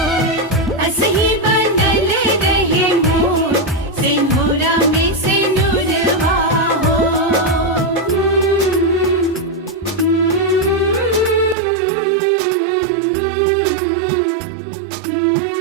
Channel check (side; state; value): left; drops out; at 11.6 s